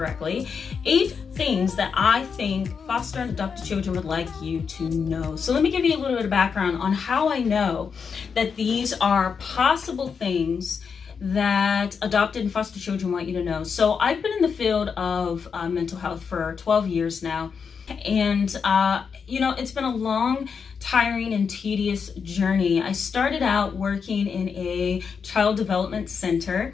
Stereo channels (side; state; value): right; quieter; 6.1 dB